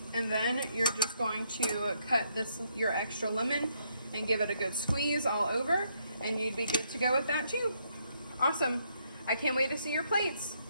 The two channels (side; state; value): both; inverted; correlation -0.73